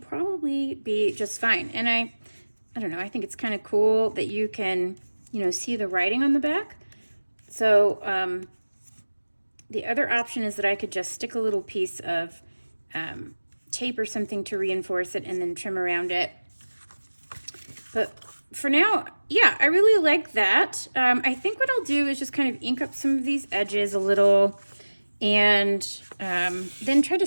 be just fine. And I don't know, I think it's kind of cool that you can, you know, see the writing on the back. So the other option is that I could just stick a little piece of tape or something to reinforce it and then trim around it. But for now, yeah, I really like that. I think what I'll do is just kind of ink up some of these edges a little, and then try to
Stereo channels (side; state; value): both; inverted; correlation -1.00